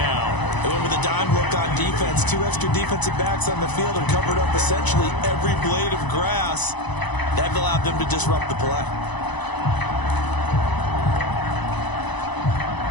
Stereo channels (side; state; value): right; late; 1.0 ms